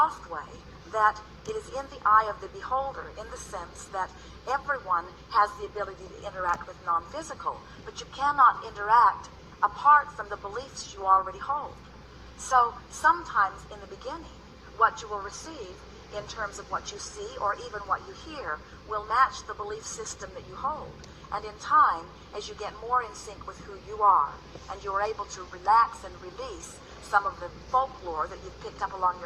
way that it is in the eye of the beholder, in the sense that everyone has the ability to interact with non-physical, but you cannot interact apart from the beliefs you already hold. So sometimes in the beginning, what you will receive in terms of what you see or even what you hear will match the belief system that you hold. And in time, as you get more in sync with who you are, and you're able to relax and release some of the folklore that you've picked up along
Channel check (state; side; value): identical; both; correlation 1.00